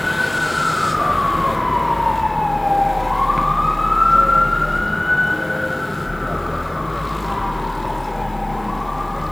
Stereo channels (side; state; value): left; noise; hiss, 29 dB below the sound